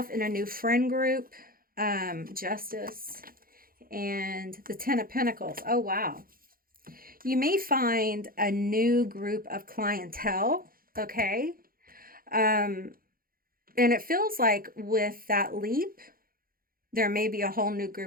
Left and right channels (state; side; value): late; left; 0.42 ms